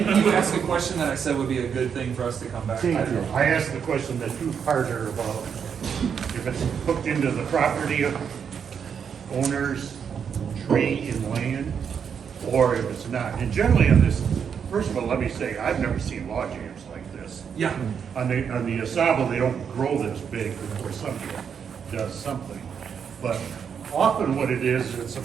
you ask a question that I said would be a good thing for us to come back to? I asked the question that two-parter about if it's hooked into the property of owners, tree and land, or if it's not. And generally on this, first of all, let me say, I've never seen log jams like this. Yeah. On the Asaba, they don't grow this big before somebody does something. But often what it is, it's a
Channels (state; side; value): quieter; left; 7.2 dB